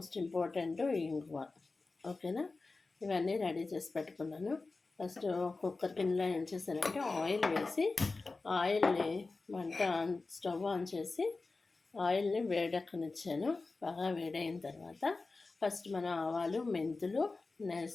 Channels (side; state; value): right; quieter; 3.7 dB